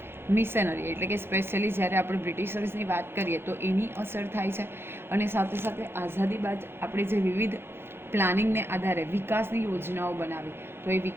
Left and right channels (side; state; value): left; late; 0.11 ms